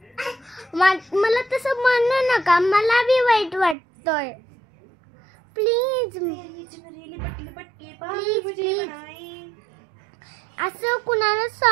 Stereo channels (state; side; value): drops out; left; at 3.8 s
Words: मला तसं म्हणू नका, मला बी वाईट वाटतंय. Please please please. असं कुणाला